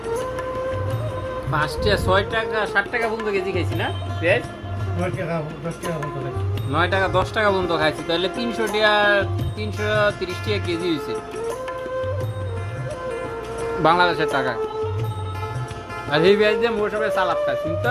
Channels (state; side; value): identical; both; correlation 1.00